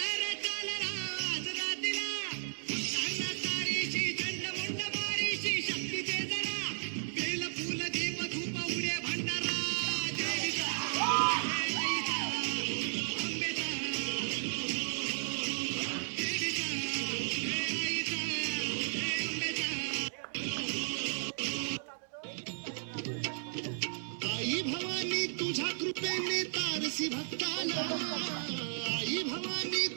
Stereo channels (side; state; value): left; silent; 55 dB below the other